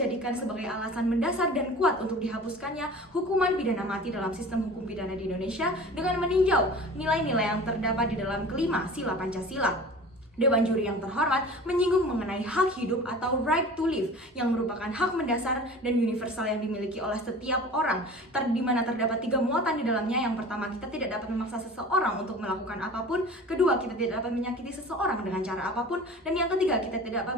sebagai alasan mendasar dan kuat untuk dihapuskannya hukuman pidana mati dalam sistem hukum pidana di Indonesia dengan meninjau nilai-nilai yang terdapat di dalam kelima sila Pancasila. Dewan Juri yang terhormat menyinggung mengenai hak hidup atau right to live yang merupakan hak mendasar dan universal yang dimiliki oleh setiap orang, di mana terdapat 3 muatan di dalamnya. Yang pertama, kita tidak dapat memaksa seseorang untuk melakukan apapun. Kedua, kita tidak dapat menyakiti seseorang dengan cara apapun. Dan yang ketiga, kita tidak dapat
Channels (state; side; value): normal; both; correlation 0.40